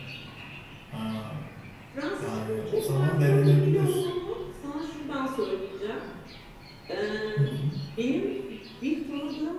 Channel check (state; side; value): identical; both; correlation 1.00